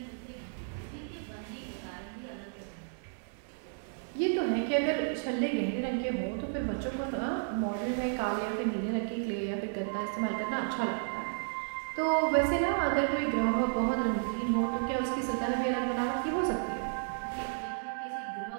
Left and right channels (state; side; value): silent; left; digital silence